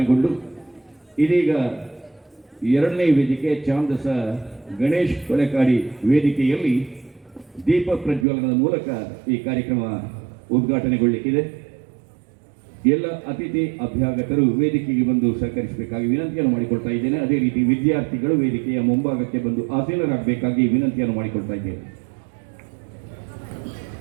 ಇದೀಗ ಎರಡನೇ ವೇದಿಕೆ ಚಾಂದಸ ಗಣೇಶ್ ಕೊಲೆಕಾಡಿ ವೇದಿಕೆಯಲ್ಲಿ ದೀಪ ಪ್ರಜ್ವಲನದ ಮೂಲಕ ಈ ಕಾರ್ಯಕ್ರಮ ಉದ್ಘಾಟನೆಗೊಳ್ಳಲಿಕ್ಕಿದೆ. ಎಲ್ಲ ಅತಿಥಿ ಅಭ್ಯಾಗತರು ವೇದಿಕೆಗೆ ಬಂದು ಸಹಕರಿಸಬೇಕಾಗಿ ವಿನಂತಿಯನ್ನು ಮಾಡಿಕೊಳ್ತಾ ಇದ್ದೇನೆ. ಅದೇ ರೀತಿ ವಿದ್ಯಾರ್ಥಿಗಳು ವೇದಿಕೆಯ ಮುಂಭಾಗಕ್ಕೆ ಬಂದು ಆಸೀನರಾಗಬೇಕಾಗಿ ವಿನಂತಿಯನ್ನು ಮಾಡಿಕೊಳ್ತಾ ಇದ್ದೇನೆ.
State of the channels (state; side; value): drops out; left; at 8.2 s